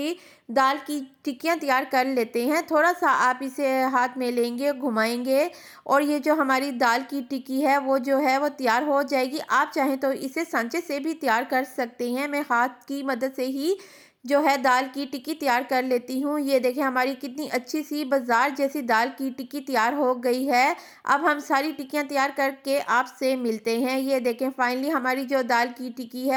दाल की टिक्कियाँ तैयार कर लेते हैं। थोड़ा सा आप इसे हाथ में लेंगे, घुमाएंगे और ये जो हमारी दाल की टिक्की है वो जो है वो तैयार हो जाएगी। आप चाहें तो इसे सांचे से भी तैयार कर सकते हैं। मैं हाथ की मदद से ही जो है दाल की टिक्की तैयार कर लेती हूँ। ये देखें हमारी कितनी अच्छी सी बाज़ार जैसी दाल की टिक्की तैयार हो गई है। अब हम सारी टिक्कियाँ तैयार करके आपसे मिलते हैं। ये देखें फाइनली हमारी जो दाल की टिक्की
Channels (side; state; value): both; identical; correlation 1.00